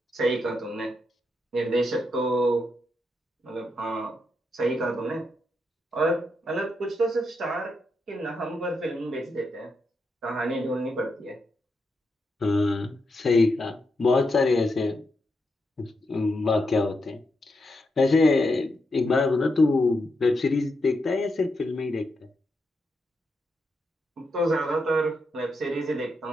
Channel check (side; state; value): both; normal; correlation 0.83